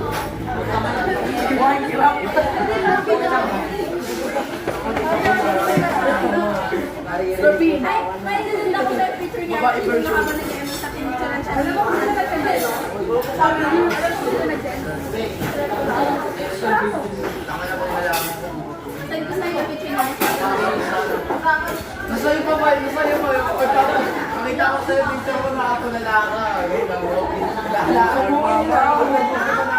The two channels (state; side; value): identical; both; correlation 1.00